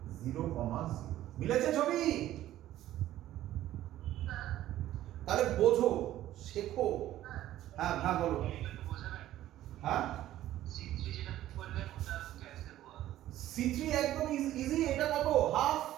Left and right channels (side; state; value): left; quieter; 13.6 dB